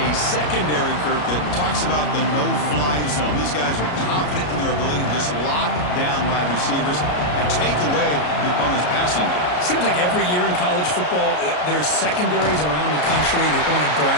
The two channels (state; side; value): late; right; 33 ms